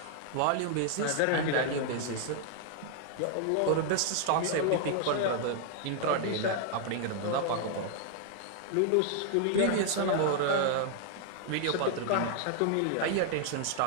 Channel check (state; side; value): different; both; correlation 0.00